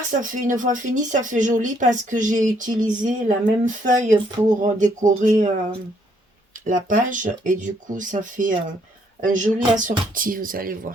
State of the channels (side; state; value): both; normal; correlation 0.69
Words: ça fait une fois fini, ça fait joli parce que j'ai utilisé la même feuille pour décorer la page. Et du coup, ça fait un joli assorti, vous allez